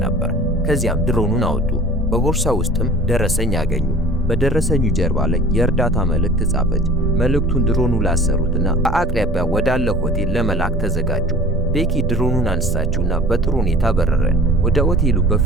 ነበር። ከዚያም ድሮኑን አወጡ። በቦርሳ ውስጥም ደረሰኝ ያገኙ። በደረሰኙ ጀርባ ላይ የእርዳታ መልእክት ጻፈች። መልእክቱን ድሮኑ ላሰሩትና በአቅራቢያ ወዳለ ሆቴል ለመላክ ተዘጋጁ። ቤኪ ድሮኑን አነሳችውና በጥሩ ሁኔታ በረረ። ወደ ሆቴሉ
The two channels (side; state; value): both; normal; correlation 0.44